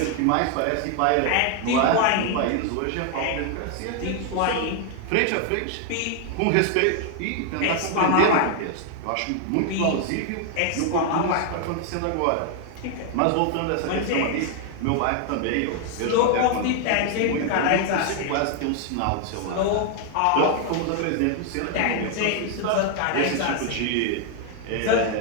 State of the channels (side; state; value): both; different; correlation 0.00